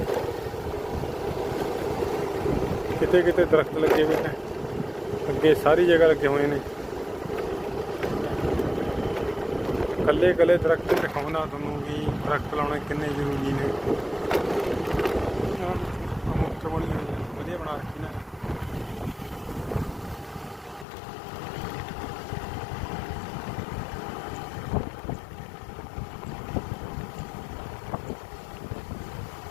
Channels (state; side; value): drops out; right; at 20.9 s